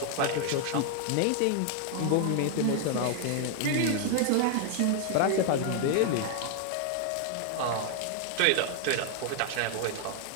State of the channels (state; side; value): different; both; correlation 0.00